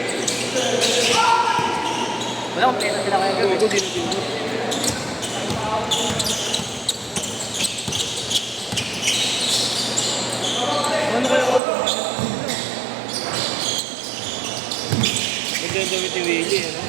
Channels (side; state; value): left; drops out; at 11.6 s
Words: Wala kong play na sila kaya gawin. Ano kaya ako? Magdadawit yung Willie, ano?